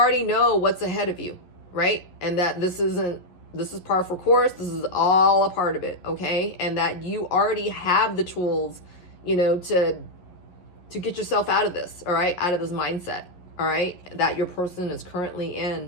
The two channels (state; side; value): late; right; 11 ms